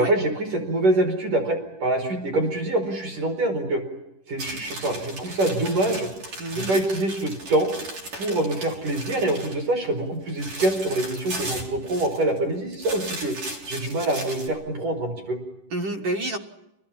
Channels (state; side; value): late; left; 10 ms